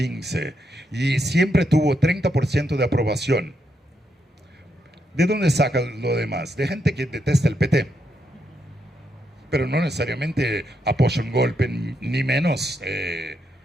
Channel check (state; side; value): normal; both; correlation 0.80